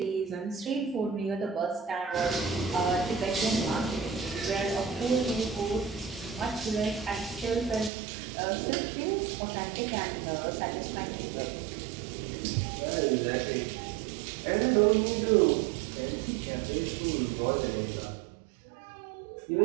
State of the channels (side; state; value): left; drops out; at 7.9 s